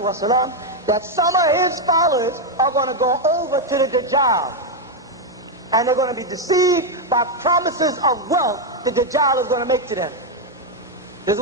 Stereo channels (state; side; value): normal; both; correlation 0.03